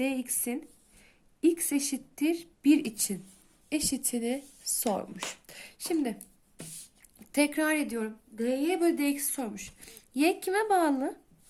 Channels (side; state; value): both; identical; correlation 1.00